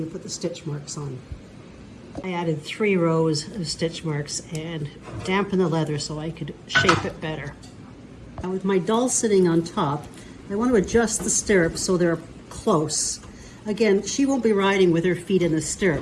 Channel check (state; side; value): identical; both; correlation 1.00